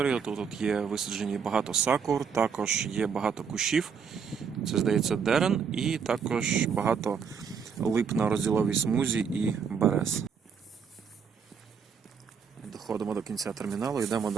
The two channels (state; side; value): quieter; left; 6.4 dB